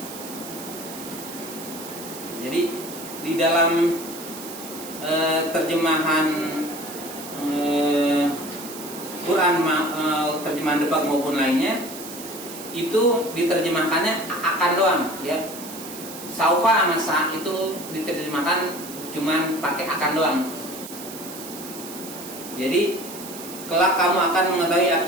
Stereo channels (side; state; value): right; noise; hiss, 12 dB below the sound